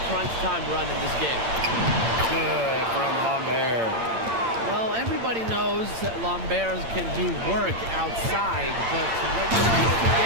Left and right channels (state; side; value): late; left; 8.8 ms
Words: crunch time run in this game. Good from Lambert. Well, everybody knows that Lambert can do work outside, but what you